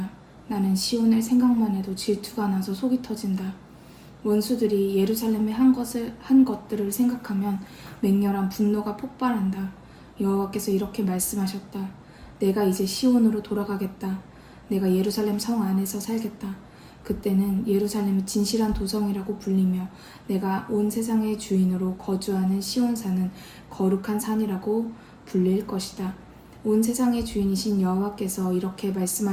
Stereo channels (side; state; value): both; identical; correlation 1.00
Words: 나는 시온을 생각만 해도 질투가 나서 속이 터진다. 원수들이 예루살렘에 한 것들을 생각하면 맹렬한 분노가 폭발한다. 여호와께서 이렇게 말씀하셨다. 내가 이제 시온으로 돌아가겠다. 내가 예루살렘 성 안에서 살겠다. 그때는 예루살렘이 진실한 도성이라고 불리며 내가 온 세상의 주인으로 거주하는 시온산은 거룩한 산이라고 불릴 것이다. 온 세상의 주인이신 여호와께서 이렇게